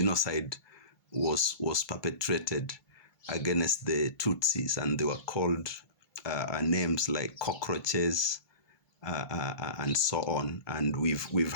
was perpetrated against the Tutsis, and they were called names like cockroaches, and so on. And we've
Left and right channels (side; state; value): right; late; 2.3 ms